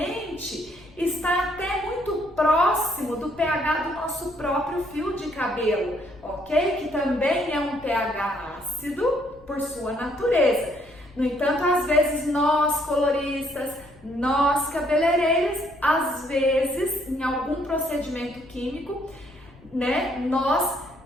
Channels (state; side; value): noise; left; rumble, 25 dB below the sound